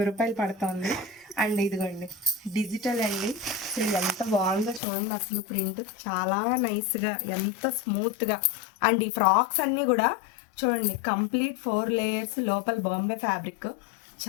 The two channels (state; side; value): drops out; right; at 4.8 s